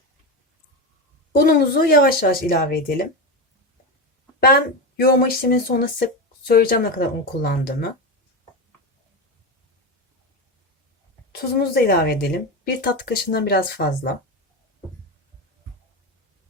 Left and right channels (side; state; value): both; normal; correlation 0.17